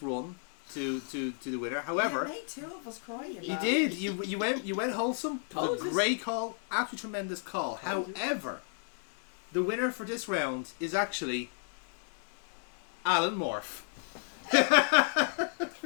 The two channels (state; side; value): silent; right; 56 dB below the other